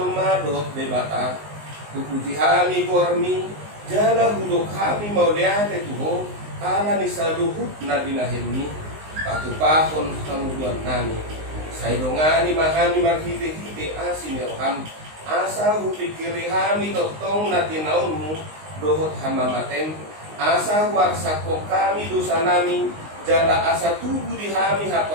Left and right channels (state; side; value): late; left; 19 ms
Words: dohot debata puputi hami gormi jala hudok hami mauliate tuho ala ni saluhut na binahemi patupahon kamuduan nami saidongani mahami marhite-hite asin roham asa hupikiri hami totong na tinaunmu dohot hamamatem asa warsako kami dosa nami jala asa tubuh di hami